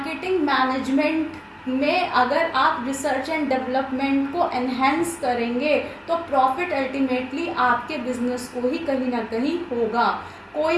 मैनेजमेंट में अगर आप रिसर्च एंड डेवलपमेंट को एनहेंस करेंगे तो प्रॉफिट अल्टीमेटली आपके बिजनेस को ही कहीं ना कहीं होगा।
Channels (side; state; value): both; identical; correlation 1.00